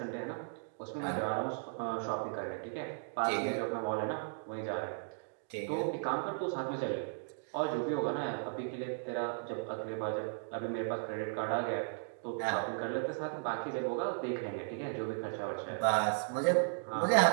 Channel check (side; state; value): left; silent; digital silence